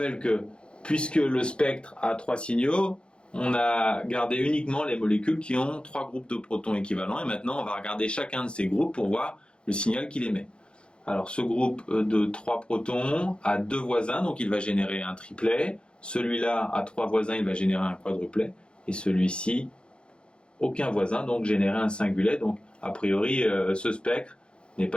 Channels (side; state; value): right; late; 0.054 ms